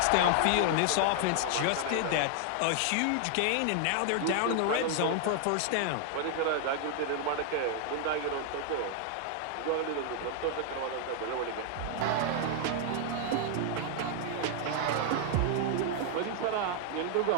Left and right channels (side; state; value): both; different; correlation 0.00